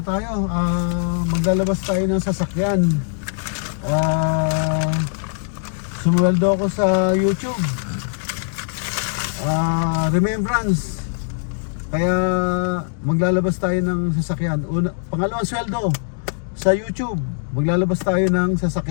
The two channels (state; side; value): silent; right; digital silence